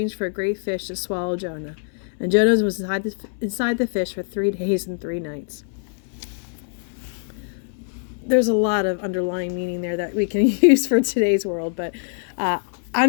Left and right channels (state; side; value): silent; right; 58 dB below the other